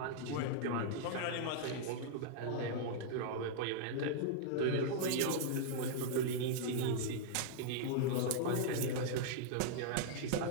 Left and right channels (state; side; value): different; both; correlation -0.01